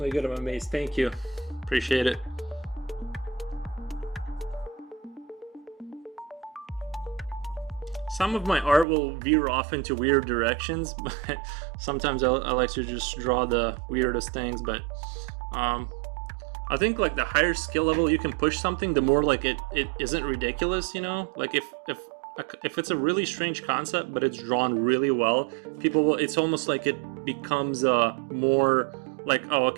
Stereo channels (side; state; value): left; drops out; at 8.8 s